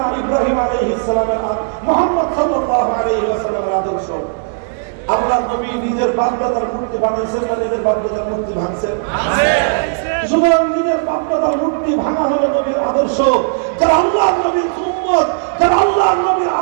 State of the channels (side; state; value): left; silent; 69 dB below the other